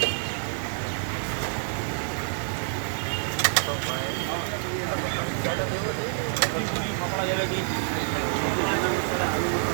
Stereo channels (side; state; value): left; silent; 60 dB below the other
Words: तो ज़्यादा देवो दे कपड़ा जलेगी